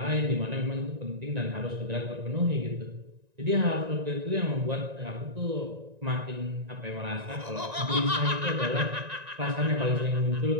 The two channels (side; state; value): left; late; 1.9 ms